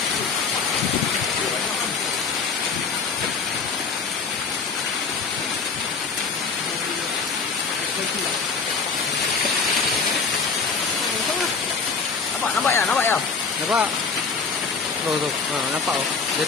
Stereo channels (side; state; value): right; quieter; 5.0 dB